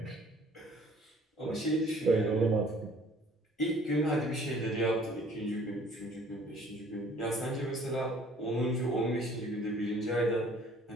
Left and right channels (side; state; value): both; normal; correlation 0.55